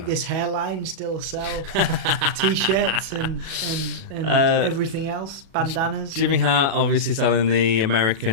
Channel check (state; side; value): late; left; 37 ms